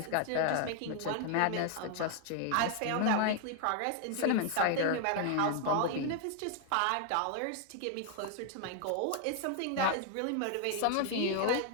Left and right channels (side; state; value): both; different; correlation 0.00